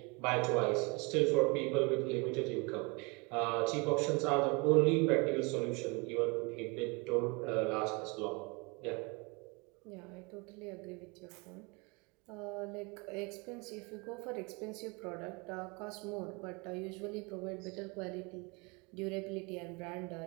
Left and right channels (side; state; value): left; quieter; 28.9 dB